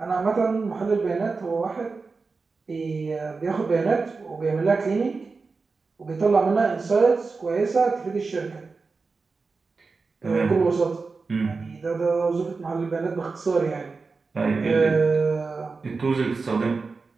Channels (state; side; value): quieter; left; 4.3 dB